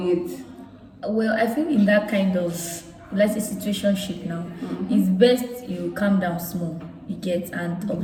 it? Well, I think in that kind of let's say situationship now, it's best you calm down small, you get, and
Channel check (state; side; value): identical; both; correlation 1.00